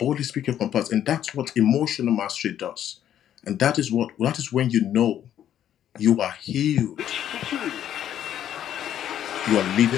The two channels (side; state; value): right; quieter; 10.7 dB